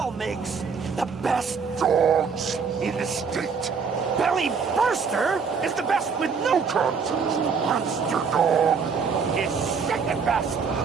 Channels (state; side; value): quieter; left; 5.7 dB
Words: makes the best dogs in the state. Belly Burster is the best with no contest. Monster Dog is second best.